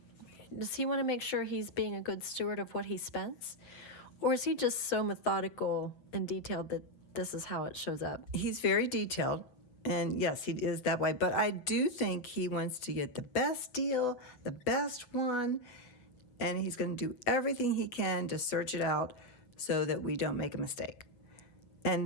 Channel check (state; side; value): late; right; 8.0 ms